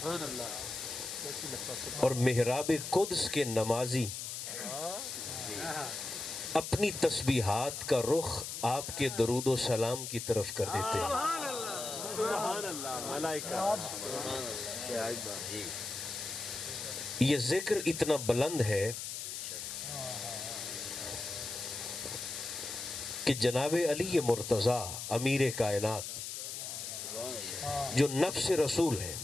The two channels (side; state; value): left; noise; hiss, 6 dB below the sound